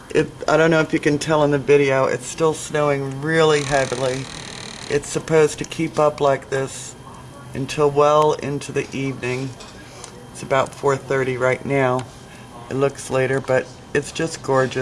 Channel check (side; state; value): both; identical; correlation 1.00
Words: I don't know if you can tell in the video, it's still snowing really heavily. It's supposed to keep up like this until well into the evening. It's about 4:30 right now. It looks later, but it's just